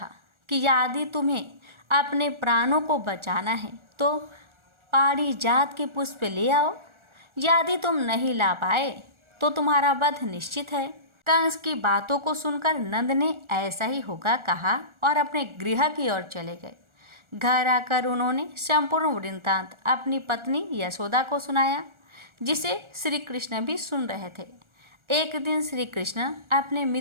कि यदि तुम्हें अपने प्राणों को बचाना है तो पारिजात के पुष्प ले आओ। यदि तुम नहीं ला पाए तो तुम्हारा वध निश्चित है। कंस की बातों को सुनकर नंद ने ऐसा ही होगा कहा और अपने गृह की ओर चले गए। घर आकर उन्होंने संपूर्ण वृत्तांत अपनी पत्नी यशोदा को सुनाया, जिसे श्री कृष्ण भी सुन रहे थे। एक दिन श्री कृष्ण अपने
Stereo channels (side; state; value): left; late; 1.4 ms